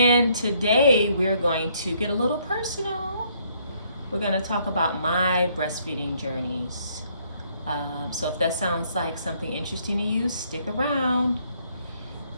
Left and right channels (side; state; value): both; inverted; correlation -0.67